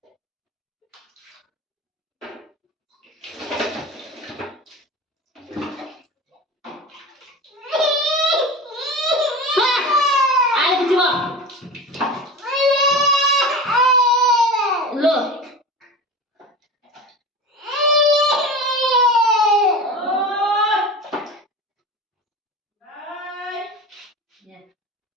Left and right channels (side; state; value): both; normal; correlation 0.31